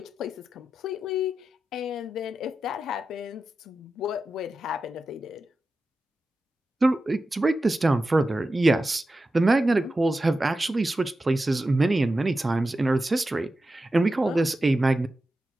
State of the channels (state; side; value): normal; both; correlation 0.92